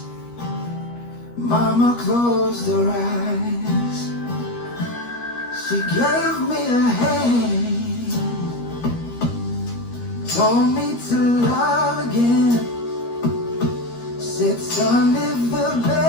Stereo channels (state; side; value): late; right; 13 ms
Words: Mama closed her eyes. She gave me a hand, told me to love again. Said, son, live the